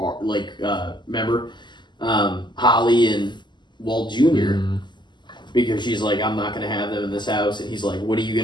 remember, Holly and Walt Jr. Mm. Because she's like, I'm not going to have them in this house. And he's like, what are you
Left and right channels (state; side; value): late; right; 0.22 ms